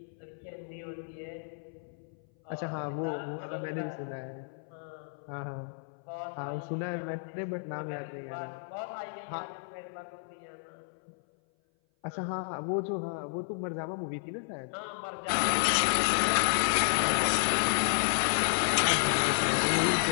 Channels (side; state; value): right; silent; 57 dB below the other